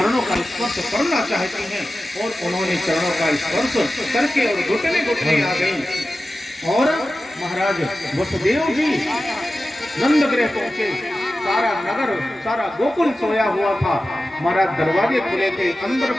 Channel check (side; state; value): both; normal; correlation 0.94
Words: का स्पर्श करना चाहती हैं। और उन्होंने चरणों का स्पर्श करके और घुटने घुटने आ गई। और महाराज वसुदेव जी नंदगृह पहुंचे। सारा नगर, सारा गोकुल सोया हुआ था। महाराज दरवाजे खुले थे, अंदर